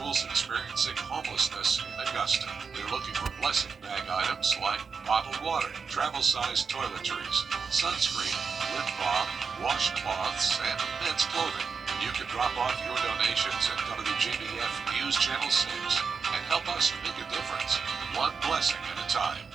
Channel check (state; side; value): quieter; left; 5.5 dB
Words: experiencing homelessness in Augusta. They're looking for blessing bag items like bottled water, travel-sized toiletries, sunscreen, lip balm, washcloths, and men's clothing. You can drop off your donations at WJBF News Channel 6 and help us make a difference, one blessing at a time.